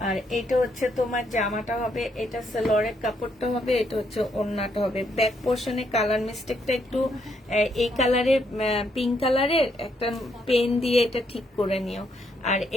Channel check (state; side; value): normal; both; correlation 0.74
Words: আর এটা হচ্ছে তোমার জামাটা হবে, এটা সালোয়ারের কাপড়টা হবে, এটা হচ্ছে ওড়নাটা হবে। ব্যাক পোর্শনে কালার মিস্টেকটা একটু এই কালারের, পিঙ্ক কালারের একটা পেন দিয়ে এটা ঠিক করে নিও। আর